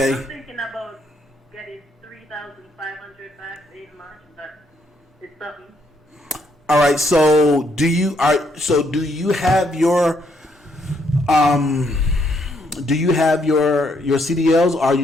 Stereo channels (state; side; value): normal; both; correlation 0.73